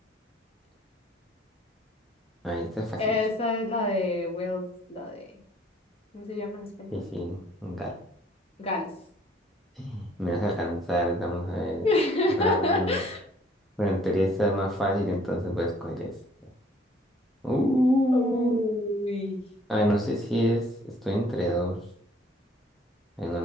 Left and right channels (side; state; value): both; normal; correlation 0.58